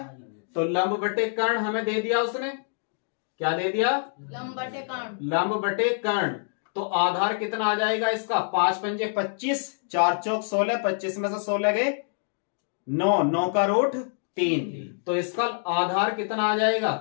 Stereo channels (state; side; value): silent; right; digital silence